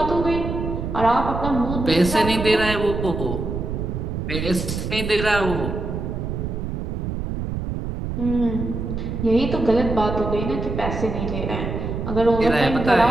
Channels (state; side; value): noise; right; rumble, 4 dB below the sound